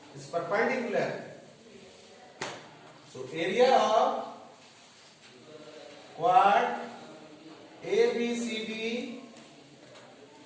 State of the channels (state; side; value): identical; both; correlation 1.00